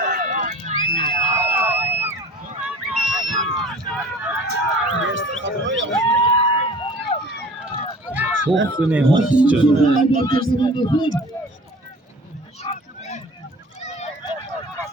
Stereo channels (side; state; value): both; normal; correlation 0.45